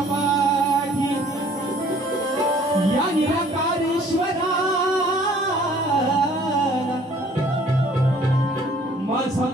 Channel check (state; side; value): normal; both; correlation 0.56